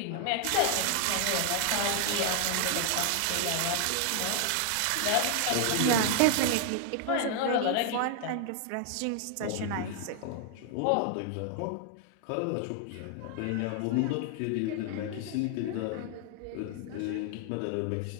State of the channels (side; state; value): both; different; correlation 0.00